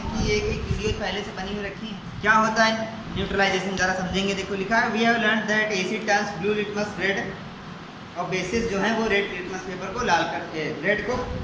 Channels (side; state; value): both; identical; correlation 1.00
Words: एक वीडियो पहले से बनी हुई रखी है। क्या होता है न्यूट्रलाइजेशन, ज़रा समझेंगे। देखो लिखा है, we have learn that acid turns blue litmus red, और बेसिस जो है वो रेड लिटमस पेपर को लाल कर, रेड को